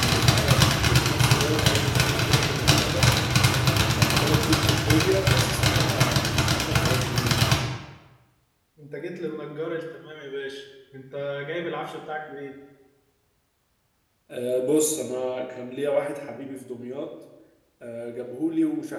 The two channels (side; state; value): both; identical; correlation 1.00